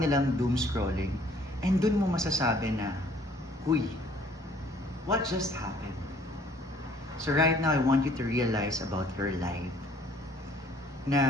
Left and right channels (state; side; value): normal; both; correlation 0.58